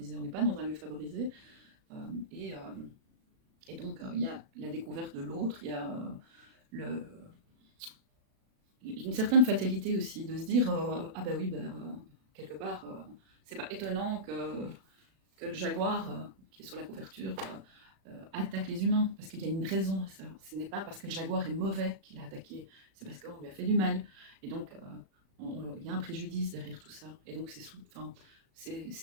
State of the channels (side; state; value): left; late; 36 ms